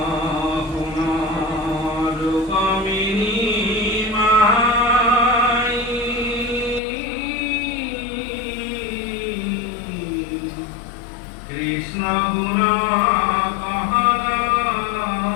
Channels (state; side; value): drops out; right; at 6.8 s